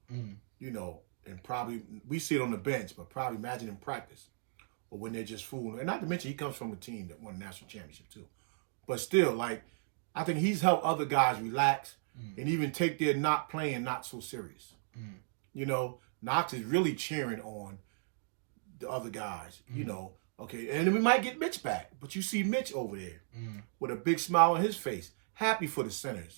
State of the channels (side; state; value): left; silent; digital silence